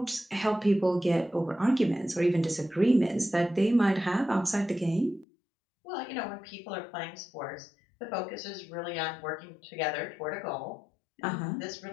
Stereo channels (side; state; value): right; drops out; at 5.2 s